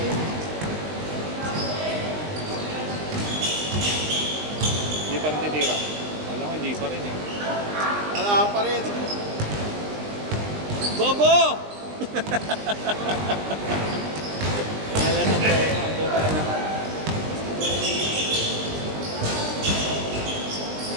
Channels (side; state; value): left; late; 20 ms